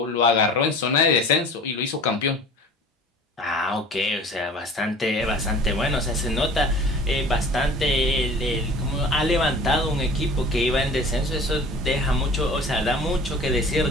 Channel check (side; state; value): both; normal; correlation 0.44